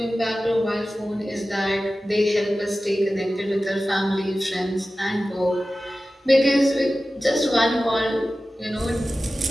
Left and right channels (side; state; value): both; normal; correlation 0.95